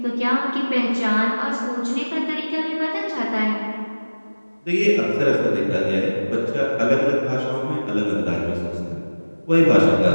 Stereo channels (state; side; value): inverted; both; correlation -1.00